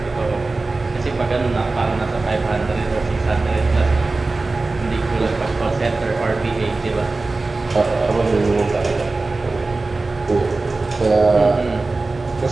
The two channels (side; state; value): left; quieter; 3.5 dB